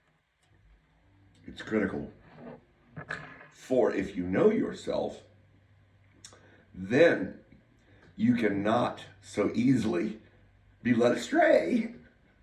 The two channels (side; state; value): both; identical; correlation 1.00